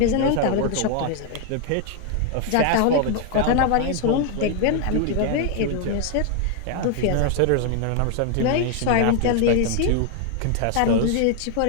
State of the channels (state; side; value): different; both; correlation 0.00